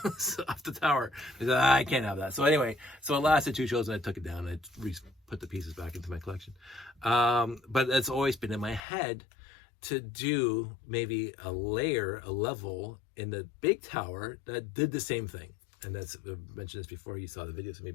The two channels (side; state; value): right; drops out; at 8.8 s